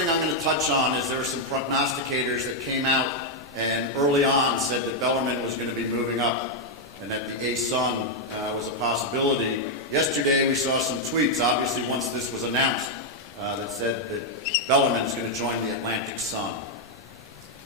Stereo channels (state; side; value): normal; both; correlation -0.01